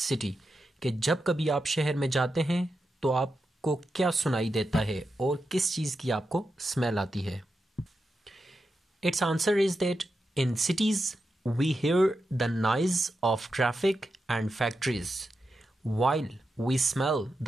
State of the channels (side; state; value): both; normal; correlation 0.88